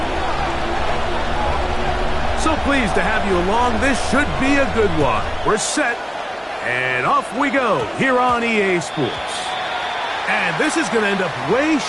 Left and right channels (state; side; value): identical; both; correlation 1.00